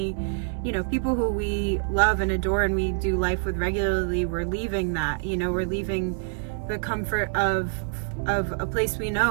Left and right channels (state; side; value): silent; left; 61 dB below the other